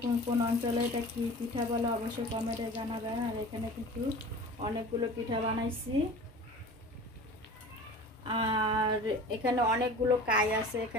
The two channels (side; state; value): both; normal; correlation 0.39